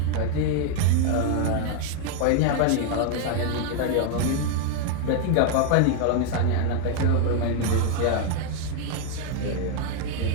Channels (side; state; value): both; different; correlation 0.00